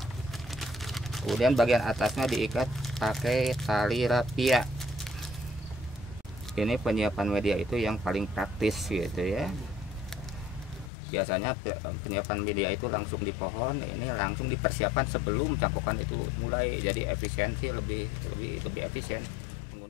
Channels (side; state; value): right; drops out; at 10.9 s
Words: Kemudian bagian atasnya diikat pakai tali rapia. Ini penyiapan media itu yang paling praktis gitu ya. Biasanya penyiapan media itu langsung di pohon, ini langsung dipersiapkan sebelum cangkokan itu mulai. Jadi efisiensi lebih efisien